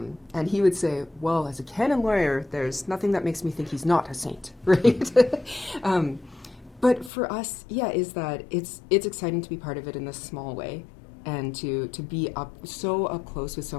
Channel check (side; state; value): right; drops out; at 7.1 s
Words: he would say, well, as a canon lawyer, there's nothing that makes me think he's not a saint, right? But for us, is that it's exciting to be part of it in this small way, and to be so up close with so